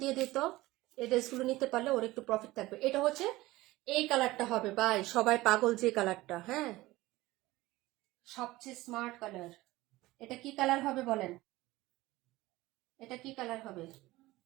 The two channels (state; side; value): quieter; left; 18.6 dB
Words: দিয়ে দিত, এই ড্রেসগুলো নিতে পারলে ওর একটু প্রফিট থাকবে। এটা হচ্ছে এই কালারটা হবে ভাই, সবাই পাগল যে কালারটা, হ্যাঁ সবচেয়ে স্মার্ট কালার। এটা কি কালার হবে বলেন, এটা কি কালার হবে?